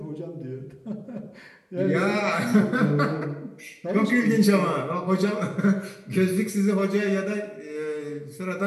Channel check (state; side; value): identical; both; correlation 1.00